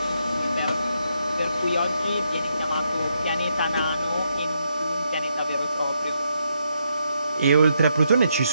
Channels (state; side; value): inverted; both; correlation -0.79